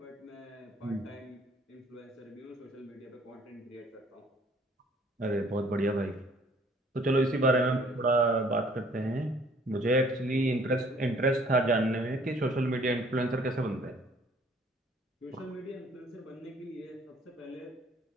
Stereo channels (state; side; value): normal; both; correlation 0.58